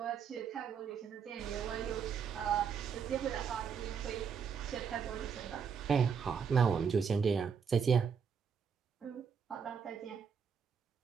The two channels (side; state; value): left; quieter; 6.7 dB